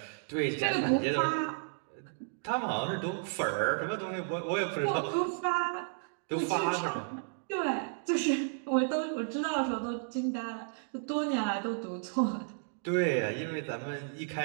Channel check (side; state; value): left; silent; digital silence